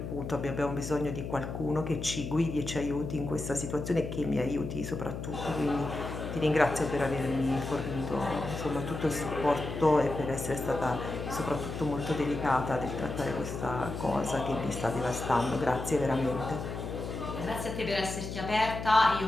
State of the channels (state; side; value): noise; left; hum, 6 dB below the sound